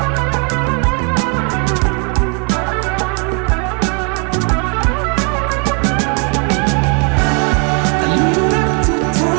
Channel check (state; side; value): quieter; left; 35.5 dB